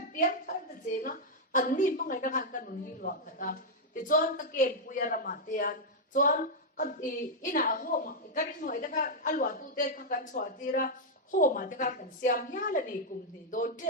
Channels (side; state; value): both; normal; correlation -0.03